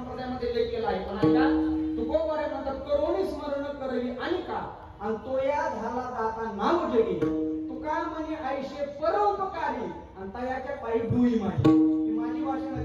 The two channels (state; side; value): identical; both; correlation 1.00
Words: लेख केला आहे. पण ऐका, तुकोबारे म्हणतात करोनी स्मरण करवी आणि का आणि तो या झाला दाता नाव जगी तुका म्हणे आयुष्य परोपकारी आणि तयाच्या पायी डुई माझी. ही माझी भाषा